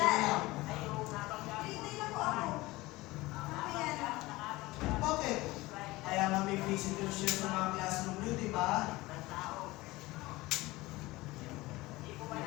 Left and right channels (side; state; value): right; quieter; 20.1 dB